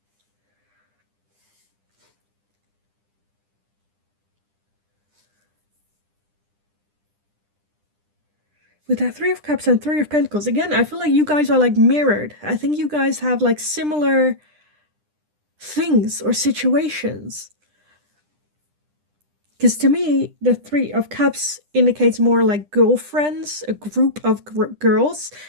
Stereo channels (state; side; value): late; left; 10 ms